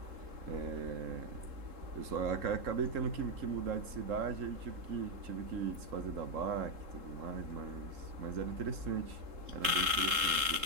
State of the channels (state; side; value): late; left; 3.7 ms